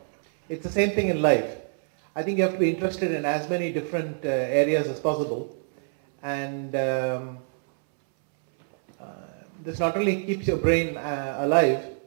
It's the same thing in life. I think you have to be interested in as many different areas as possible, and this not only keeps your brain alive.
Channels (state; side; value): silent; left; 61 dB below the other